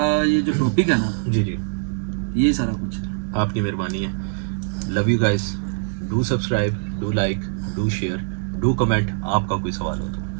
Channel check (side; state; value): left; silent; digital silence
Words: ये जो टॉपिक है ना, जी जी, ये सारा कुछ है, आपकी मेहरबानी है। Love you guys, do subscribe, do like, do share, do comment, आपका कोई सवाल हो